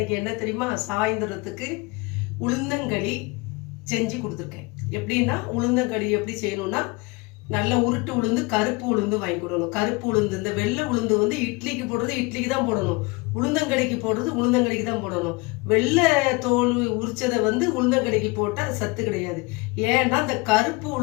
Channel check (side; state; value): right; quieter; 26.1 dB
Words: என்ன தெரியுமா? சாயந்தரத்துக்கு உளுந்தங்களி செஞ்சு கொடுத்துருக்கேன். எப்படின்னா உளுந்தங்களி எப்படி செய்யணும்னா, நல்ல உருட்டு உளுந்து, கருப்பு உளுந்து வாங்கி கொடுக்கணும். கருப்பு உளுந்து, இந்த வெள்ளை உளுந்து வந்து இட்லிக்கு போடுறது இட்லிக்கு தான் போடணும். உளுந்தங்களிக்கு போடுறது உளுந்தங்களிக்கு தான் போடணும். வெள்ளை தோல் உரிச்சதை வந்து உளுந்தங்களிக்கு போட்டால் சத்து கிடையாது. ஏன்னா அந்த கருப்பு